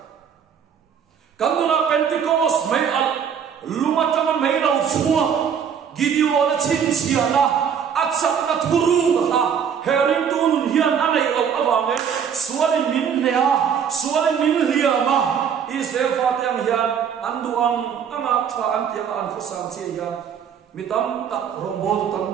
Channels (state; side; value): quieter; left; 7.6 dB